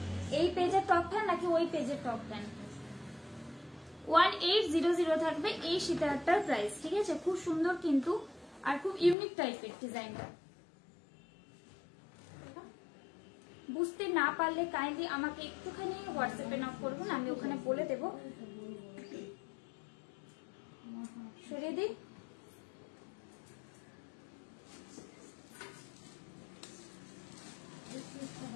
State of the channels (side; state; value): right; drops out; at 9.2 s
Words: এই পেজের টপ ফ্যান নাকি ওই পেজের টপ ফ্যান? 1800 থাকবে এই সীতাহারটার প্রাইস, ঠিক আছে। খুব সুন্দর কিন্তু, আর খুব ইউনিক টাইপের ডিজাইনটা। বুঝতে না পারলে কাইন্ডলি আমাকে একটুখানি হোয়াটসঅ্যাপে নক করবেন, আমি ওখানে বলে দেব। সরিয়ে দিই।